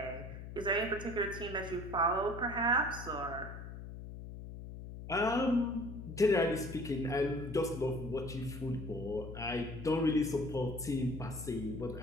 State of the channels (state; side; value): noise; left; hum, 10 dB below the sound